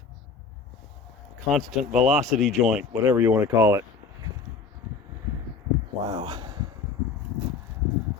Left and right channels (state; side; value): quieter; right; 5.0 dB